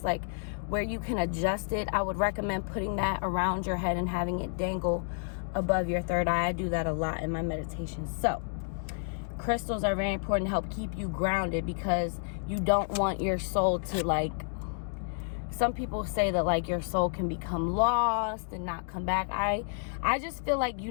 like where you can adjust it. I would recommend putting that around your head and having it dangle above your third eye. I do that a lot in my meditations. So crystals are very important to help keep you grounded, because you don't want your soul to like, some people say that like your soul can become lost and not come back. I just feel like you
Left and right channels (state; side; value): silent; right; digital silence